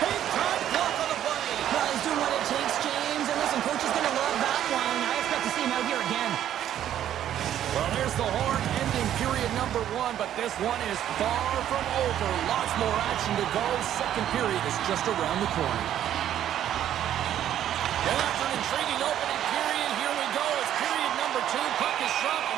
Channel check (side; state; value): left; quieter; 11.0 dB